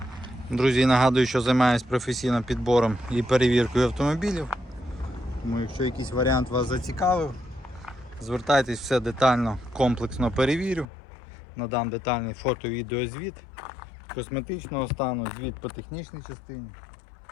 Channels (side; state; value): right; drops out; at 10.9 s